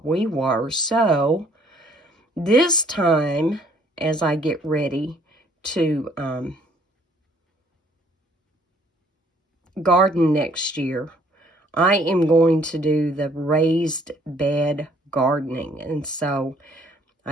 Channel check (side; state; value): both; normal; correlation 0.62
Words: we were. So this time, as I get ready to garden next year, I am going to do the raised bed gardening. And so